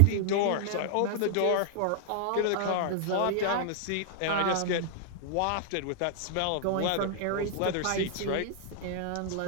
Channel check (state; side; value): different; both; correlation -0.01